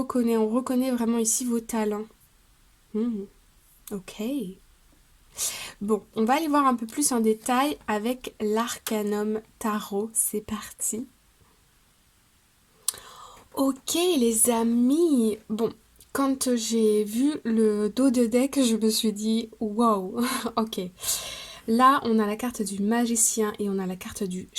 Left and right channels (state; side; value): identical; both; correlation 1.00